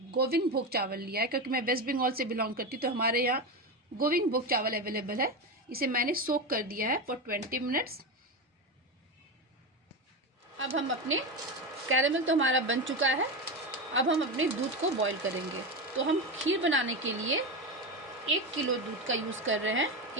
गोविंद भोग चावल लिया है, क्योंकि मैं वेस्ट बंगाल से बिलोंग करती हूँ तो हमारे यहाँ गोविंद भोग चावल अवेलेबल है। इसे मैंने सोक कर दिया है फॉर 20 मिनट्स। अब हम अपने कैरेमल तो हमारा बन चुका है। अब हम अपने दूध को बॉईल करेंगे। तो हम खीर बनाने के लिए 1 किलो दूध का यूज़ कर रहे हैं।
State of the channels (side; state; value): both; normal; correlation 0.16